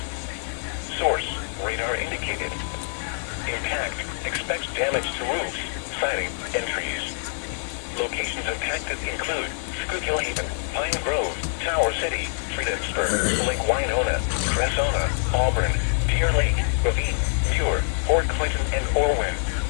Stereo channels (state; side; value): silent; right; digital silence